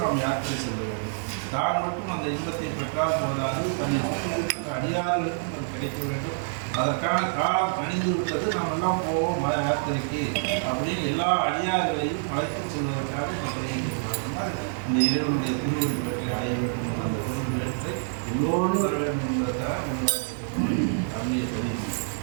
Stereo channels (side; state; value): left; silent; digital silence